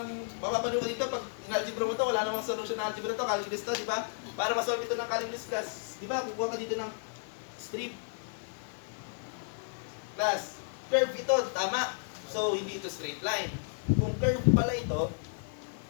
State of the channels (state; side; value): silent; right; 56 dB below the other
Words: mapapanood ka dito pag in-algebra mo to, wala namang solution na algebra to, calculus to, di ba? Para masolve ito ng calculus class, di ba, kukuha ka dito ng strip. Class, curve ito, tama. So, hindi ito straight line. Kung curve pala ito,